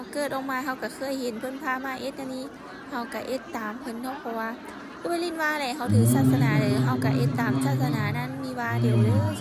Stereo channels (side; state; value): both; identical; correlation 1.00